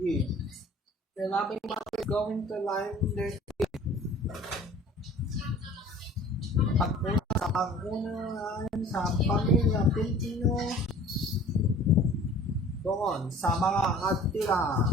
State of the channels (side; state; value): both; normal; correlation 0.48